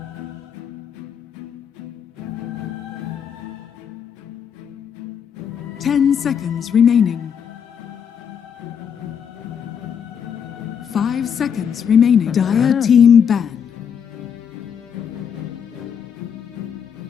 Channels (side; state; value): right; quieter; 7.6 dB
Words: Ten seconds remaining. 5 seconds remaining. Dire team ban.